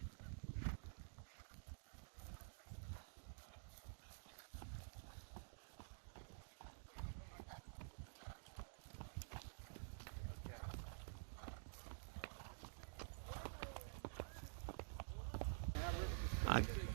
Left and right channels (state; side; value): silent; left; digital silence